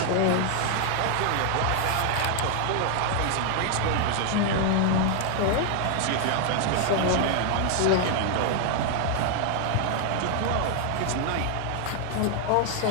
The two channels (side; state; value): both; different; correlation 0.00